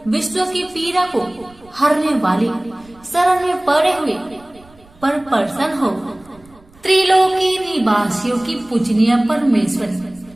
विश्व की पीड़ा को हरने वाली शरण में पड़े हुए पर प्रसन्न हो। त्रिलोकी निवासियों की पूजनीय परमेश्वरी,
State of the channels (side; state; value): right; noise; rumble, 27 dB below the sound